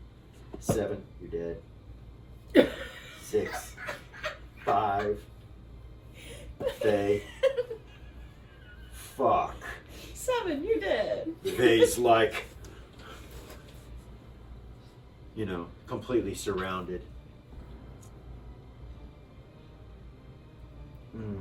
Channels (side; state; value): both; identical; correlation 1.00